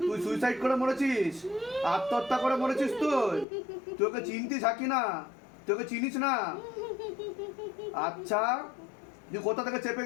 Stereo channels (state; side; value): drops out; right; at 3.5 s